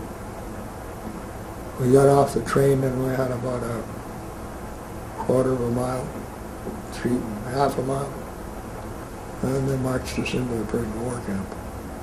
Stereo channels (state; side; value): identical; both; correlation 1.00